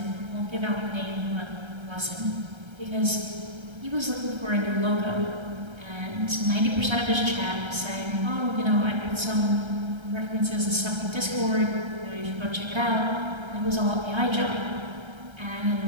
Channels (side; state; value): left; late; 1.3 ms